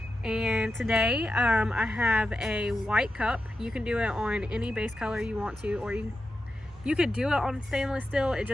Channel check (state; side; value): normal; both; correlation 0.90